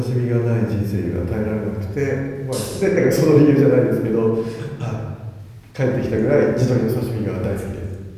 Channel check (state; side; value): identical; both; correlation 1.00